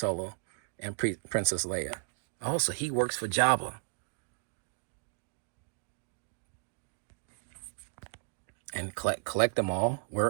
and Princess Leia. Also, he works for Jabba. And collect them all.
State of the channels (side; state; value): left; silent; digital silence